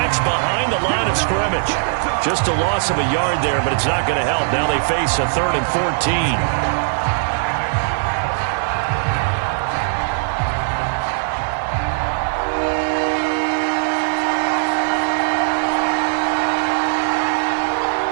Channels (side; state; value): left; silent; digital silence